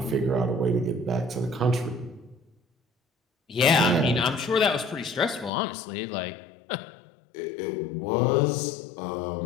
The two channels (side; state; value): right; drops out; at 5.5 s